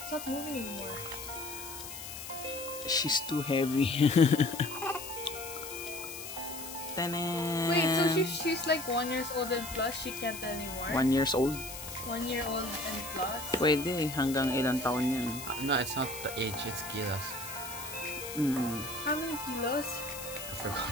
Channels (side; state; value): left; noise; hiss, 10 dB below the sound